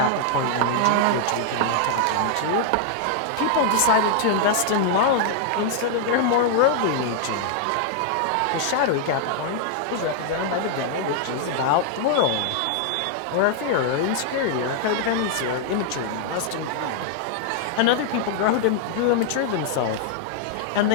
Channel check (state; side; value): different; both; correlation -0.01